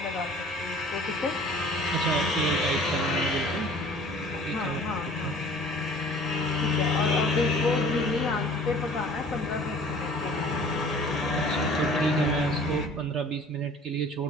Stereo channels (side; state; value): both; normal; correlation 0.49